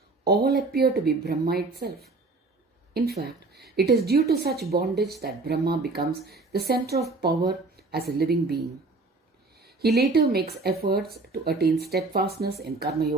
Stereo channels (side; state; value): left; quieter; 3.5 dB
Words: all appear to be Brahma itself. In fact, it is due to such bondage that Brahma becomes the center of power as a living being. He later makes efforts to attain steadfastness in Karma